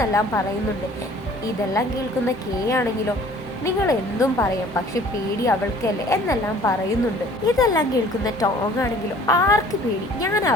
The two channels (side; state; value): both; normal; correlation 0.52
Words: പറയുന്നുണ്ട്. ഇതെല്ലാം കേൾക്കുന്ന കെ ആണെങ്കിലോ, നിങ്ങൾ എന്തും പറയാം, പക്ഷെ പേടി അവൾക്കല്ലേ എന്നെല്ലാം പറയുന്നുണ്ട്. ഇതെല്ലാം കേൾക്കുന്ന ടോങ് ആണെങ്കിലും ആർക്ക് പേടി, ഞാൻ